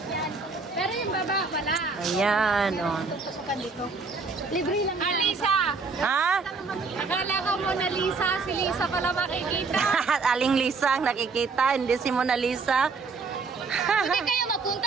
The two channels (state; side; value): quieter; left; 4.4 dB